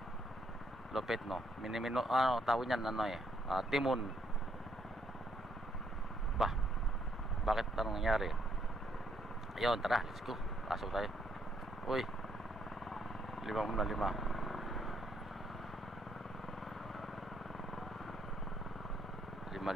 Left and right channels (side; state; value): both; normal; correlation 0.72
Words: lupit no. Minimino tawag niyan timon. Bakit anong nangyari? Ayun, tara, let's go. Pasok tayo. Uy, 5 muna 5